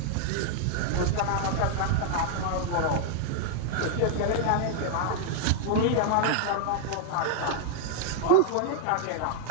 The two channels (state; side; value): different; both; correlation -0.01